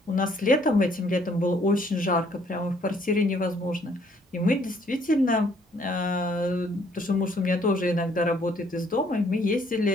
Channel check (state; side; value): normal; both; correlation 0.64